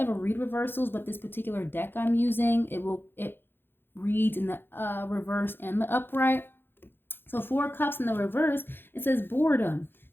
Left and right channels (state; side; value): late; right; 0.10 ms